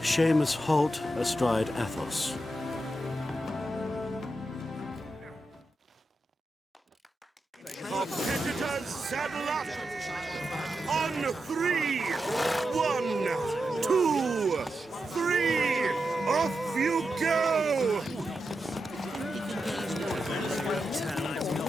Holt astride Athos. Competitors, saddle up! On 3! 1, 2, 3! Off you go!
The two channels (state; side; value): normal; both; correlation 0.88